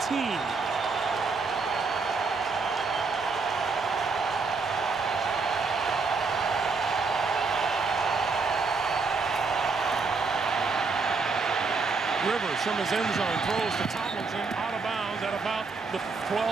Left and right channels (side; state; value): left; quieter; 4.3 dB